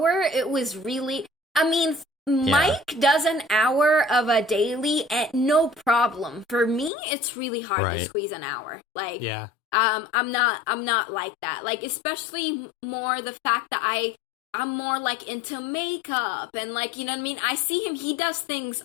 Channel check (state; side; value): drops out; right; at 6.9 s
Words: it was really. I mean, Mike does an hour of a daily, and no problem. For me, it's really hard to squeeze an hour. Like, I'm not like that. Like, especially more the fact that I'm more like into makeup and like, you know what I mean? I see him, he does things